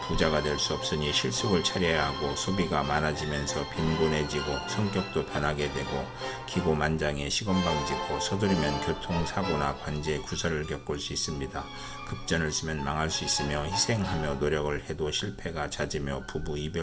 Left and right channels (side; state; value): both; identical; correlation 1.00